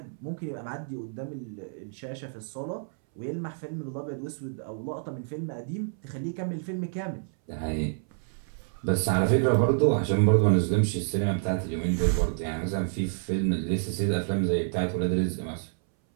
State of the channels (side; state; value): left; silent; 59 dB below the other